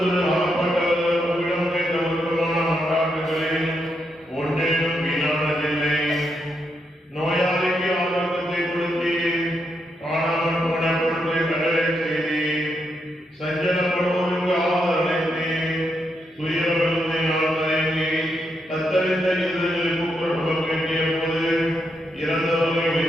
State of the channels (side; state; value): both; normal; correlation 0.81